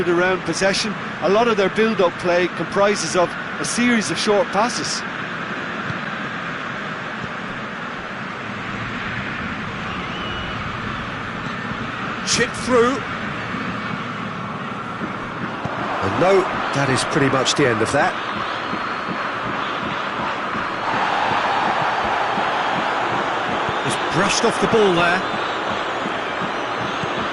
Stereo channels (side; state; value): both; identical; correlation 1.00